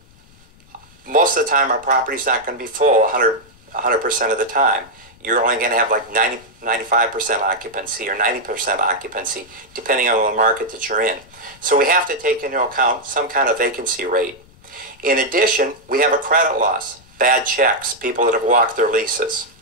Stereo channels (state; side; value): noise; left; rumble, 27 dB below the sound